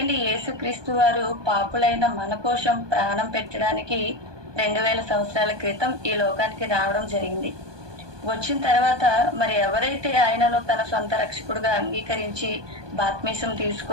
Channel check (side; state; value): left; late; 1.2 ms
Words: యేసుక్రీస్తు వారు పాపులైన మన కోసం ప్రాణం పెట్టడానికి 2000 సంవత్సరాల క్రితం ఈ లోకానికి రావడం జరిగింది. వచ్చిన తర్వాత మరి ఎవరైతే ఆయనను తన సొంత రక్షకుడుగా అంగీకరించి బాప్తిసం